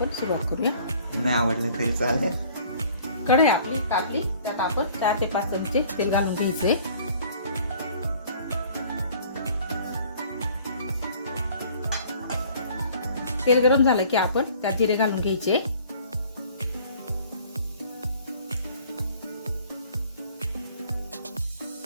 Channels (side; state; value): both; inverted; correlation -0.53